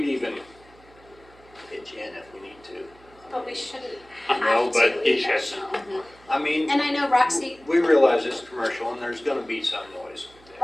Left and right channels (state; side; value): noise; right; hum, 26 dB below the sound